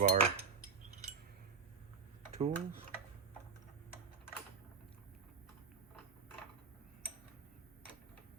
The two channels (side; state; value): left; quieter; 5.4 dB